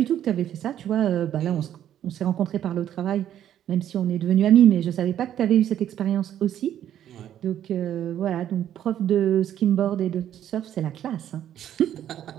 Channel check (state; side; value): quieter; left; 10.8 dB